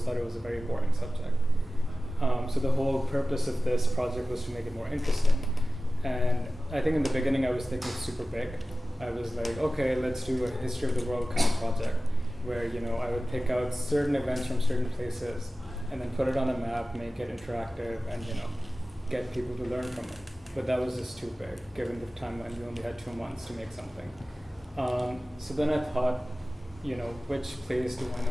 thought it was a very boring subject. So the whole purpose of this project was to make it more interesting. And I think in the beginning I was thinking super big. I was like, okay, let's do a history of the world kind of project where I would pick out certain events from certain places and then put it on a map, make it interactive, and get people to learn from it. But that was just too big, given the timeline. We only had 2 months to make something. So then I thought, which place do I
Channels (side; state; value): both; normal; correlation 0.96